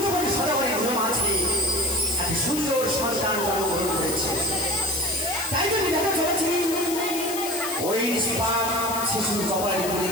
সদাগরে ঘুম আছে এক সুন্দর সন্তান জন্মগ্রহণ করেছে। তাই জন্য দেখা চলেছি ওই শিশুর কপালে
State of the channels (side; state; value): left; noise; hiss, 6 dB below the sound